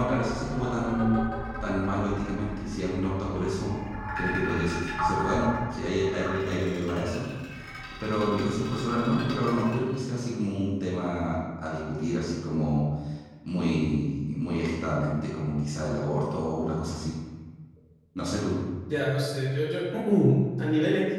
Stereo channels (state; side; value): identical; both; correlation 1.00